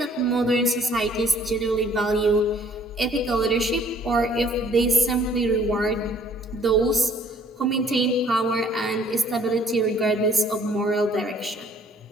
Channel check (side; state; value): both; normal; correlation 0.59